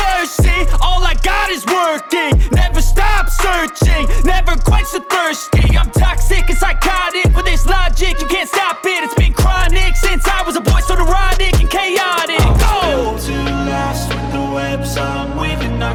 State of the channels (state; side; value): identical; both; correlation 1.00